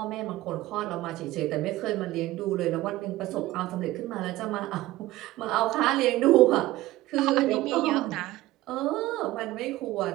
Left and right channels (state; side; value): quieter; left; 17.0 dB